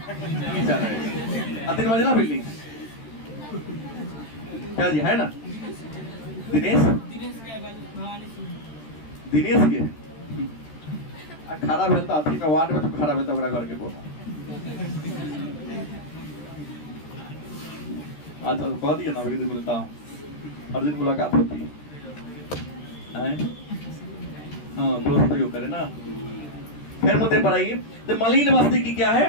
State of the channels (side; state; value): right; late; 13 ms